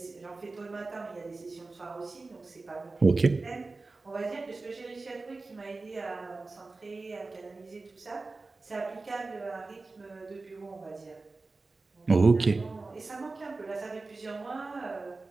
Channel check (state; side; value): quieter; left; 3.6 dB